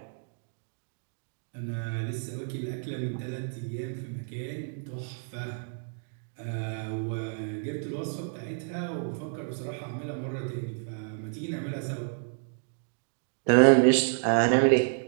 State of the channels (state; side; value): silent; left; digital silence